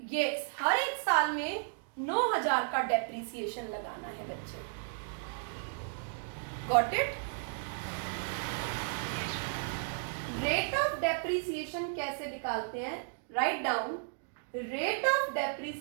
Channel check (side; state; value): left; silent; digital silence